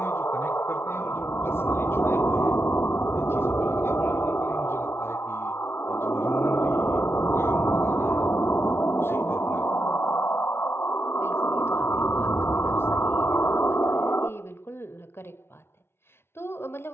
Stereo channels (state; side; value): late; right; 0.12 ms